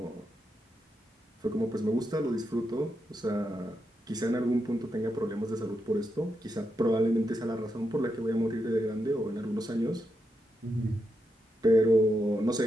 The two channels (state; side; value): normal; both; correlation 0.84